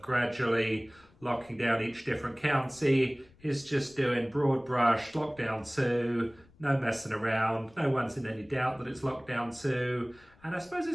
gradually locking down each different county. He's just doing broad brush Lockdown 2. No messing around, no one's in any doubt that it's Lockdown 2. And I suppose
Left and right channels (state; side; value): noise; left; rumble, 28 dB below the sound